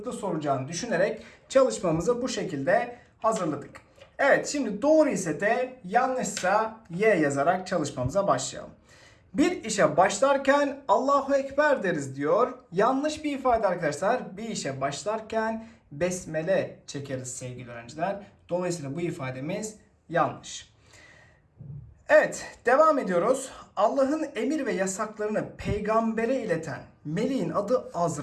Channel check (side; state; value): both; identical; correlation 1.00